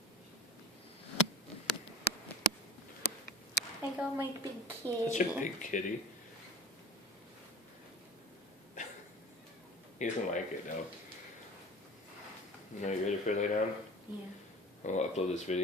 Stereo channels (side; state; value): both; normal; correlation 0.37